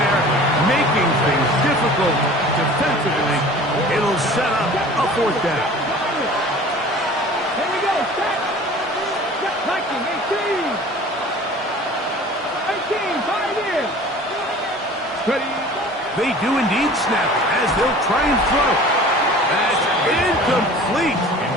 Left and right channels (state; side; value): normal; both; correlation 0.44